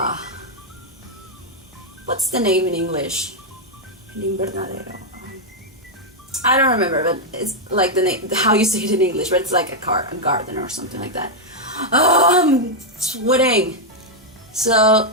what's the name in English? I don't remember, but it's like the name, how you say it in English, but it's like a garden or something like that. Oh, I'm sweating. So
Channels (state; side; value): normal; both; correlation -0.01